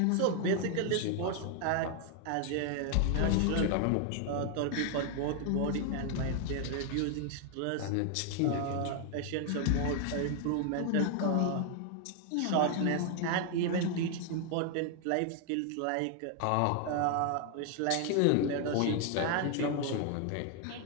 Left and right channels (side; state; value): both; different; correlation 0.00